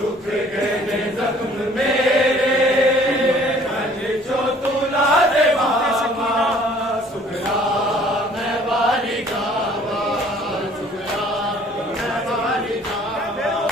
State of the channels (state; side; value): normal; both; correlation 0.55